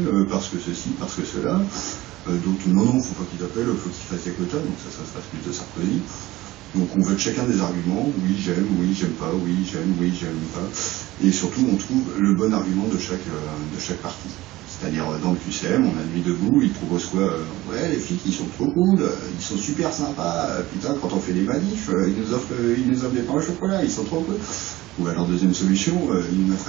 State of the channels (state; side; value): quieter; left; 17.8 dB